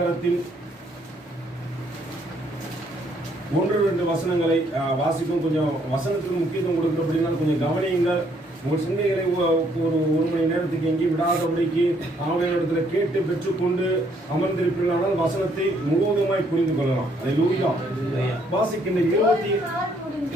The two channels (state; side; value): normal; both; correlation 0.68